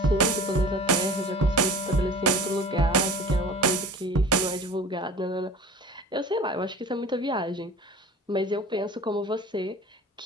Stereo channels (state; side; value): normal; both; correlation 0.40